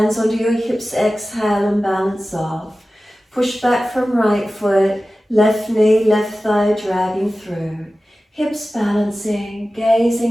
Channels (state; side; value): normal; both; correlation 0.95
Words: onto your hips, exhale and balance off. Push back from right foot, left knee, left thigh dragging through. Hips balancing,